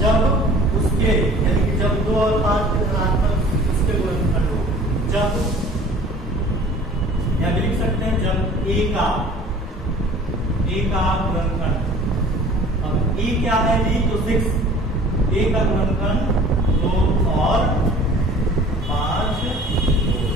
उसके, यानी कि जब 2 और 5 के धनात्मक इसके गुणनखंड हो, जब या लिख सकते हैं जब a का गुणनखंड, अब a क्या है जी? तो 6, a का गुणनखंड 2 और 5।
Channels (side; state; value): both; normal; correlation 0.47